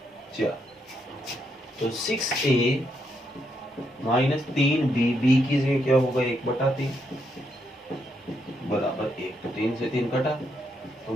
4। तो 6a माइनस 3b, b की जगह क्या होगा 1/3 बराबर 1, तो 3 से 3 कटा, तो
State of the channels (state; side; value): normal; both; correlation 0.78